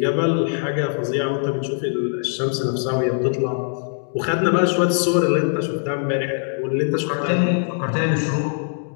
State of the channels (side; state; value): right; silent; digital silence